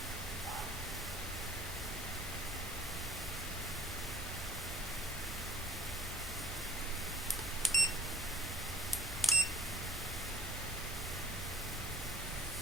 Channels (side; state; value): both; normal; correlation 0.51